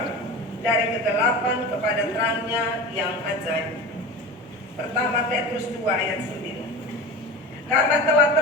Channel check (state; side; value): normal; both; correlation 0.30